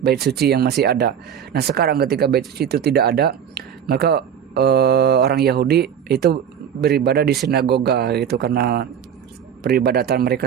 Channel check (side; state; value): left; quieter; 8.6 dB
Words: bait suci yang masih ada. Nah, sekarang ketika bait suci itu tidak ada, maka orang Yahudi itu beribadah di sinagoga gitu, karena peribadatan